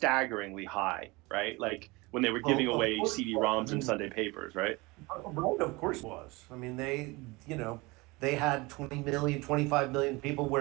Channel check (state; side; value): quieter; left; 24.1 dB